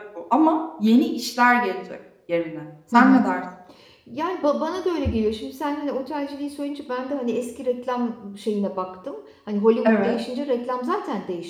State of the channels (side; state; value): both; identical; correlation 1.00